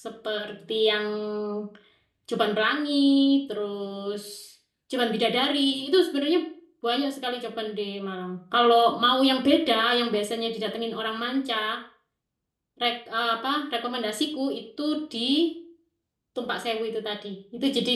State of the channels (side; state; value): both; identical; correlation 1.00